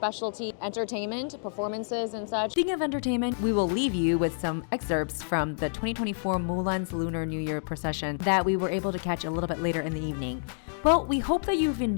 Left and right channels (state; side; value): silent; right; digital silence